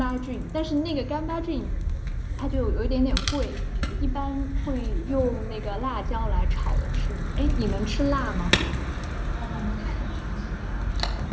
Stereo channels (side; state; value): both; identical; correlation 1.00